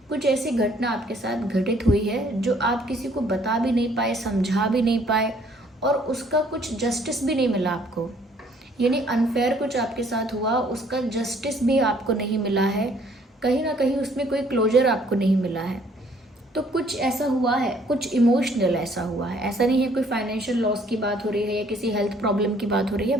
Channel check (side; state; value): both; normal; correlation 0.61